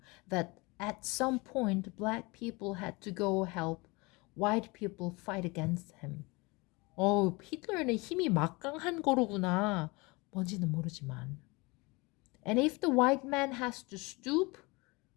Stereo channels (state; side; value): quieter; right; 25.5 dB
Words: that at some point black people had to go help white people fight against him. 히틀러는 힘이 막강한 거로구나. 뭔지는 모르지만. And if the white man has to stoop